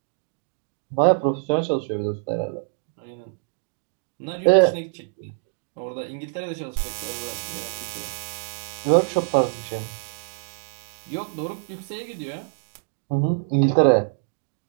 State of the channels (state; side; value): silent; left; digital silence